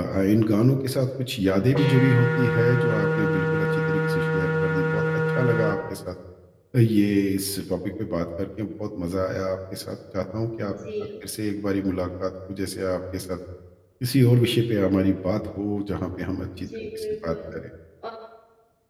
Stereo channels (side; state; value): both; identical; correlation 1.00